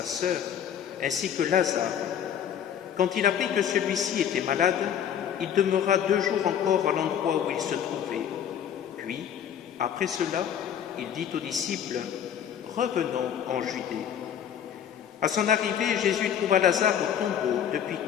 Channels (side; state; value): right; quieter; 9.1 dB